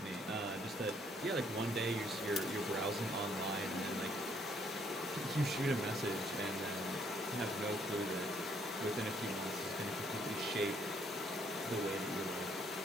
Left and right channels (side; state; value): both; normal; correlation 0.68